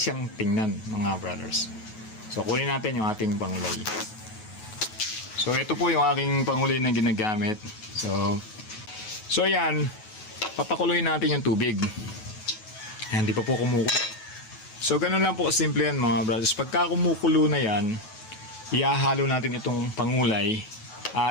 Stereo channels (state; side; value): late; right; 9.3 ms